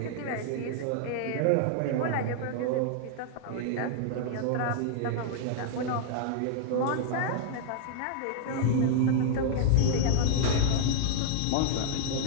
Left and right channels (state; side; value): different; both; correlation -0.01